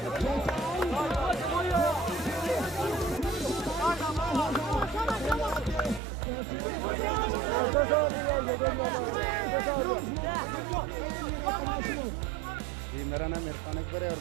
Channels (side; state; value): left; drops out; at 6.0 s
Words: मेरा नाम इरफान अकबर है और